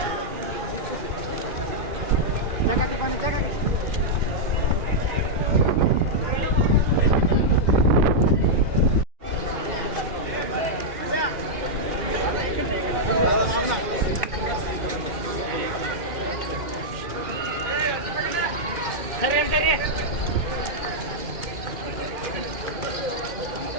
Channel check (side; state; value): left; late; 2.4 ms